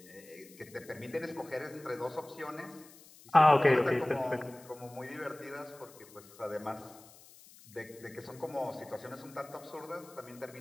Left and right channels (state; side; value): noise; left; hiss, 22 dB below the sound